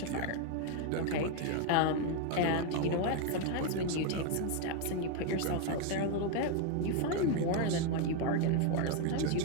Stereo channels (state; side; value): different; both; correlation 0.01